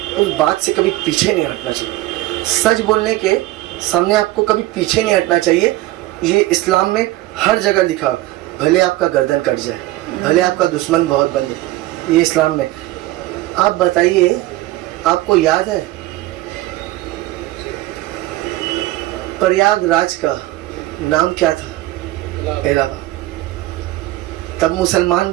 उस बात से कभी पीछे नहीं हटना चाहिए। सच बोलने के सामने आपको कभी पीछे नहीं हटना चाहिए। ये इस्लाम में हर जगह लिखा, भले आपका गर्दन कट जाए, भले आपका दुश्मन बहुत बन जाए, ये इस्लाम में। आप बताइए, आपको याद है प्रयागराज का नाम क्या था? इलाहाबाद। तब मुसलमान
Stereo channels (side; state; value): left; quieter; 17.5 dB